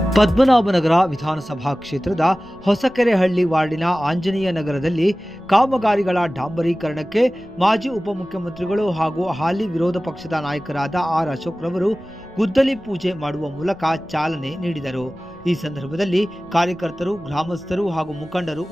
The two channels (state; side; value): noise; left; rumble, 26 dB below the sound